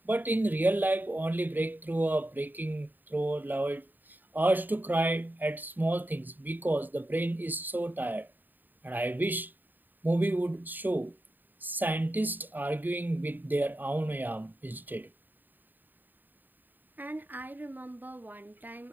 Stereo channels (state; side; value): late; left; 0.090 ms